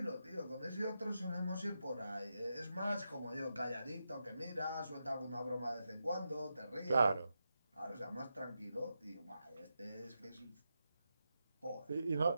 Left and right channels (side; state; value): both; inverted; correlation -0.87